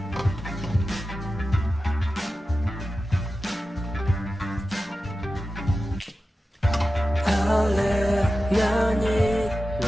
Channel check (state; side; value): normal; both; correlation 0.93